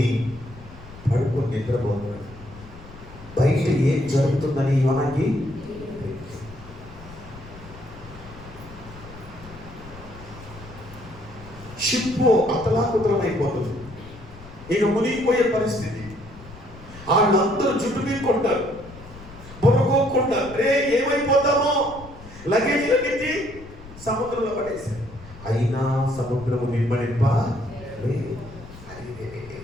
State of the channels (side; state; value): left; noise; rumble, 17 dB below the sound